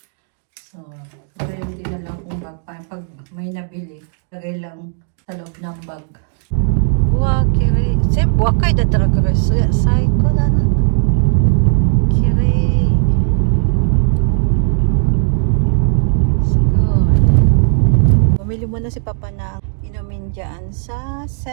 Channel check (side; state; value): left; silent; digital silence